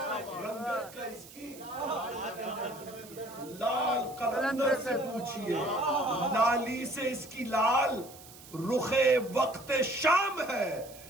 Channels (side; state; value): right; noise; hiss, 19 dB below the sound